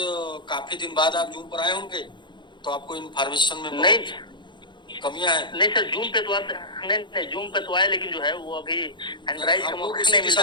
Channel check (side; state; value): right; late; 0.22 ms